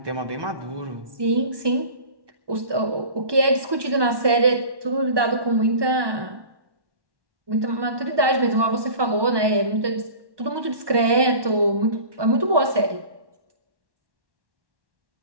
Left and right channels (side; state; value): left; late; 1.2 ms